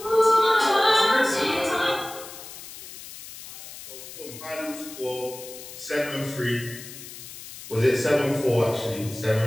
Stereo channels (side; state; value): left; noise; hiss, 14 dB below the sound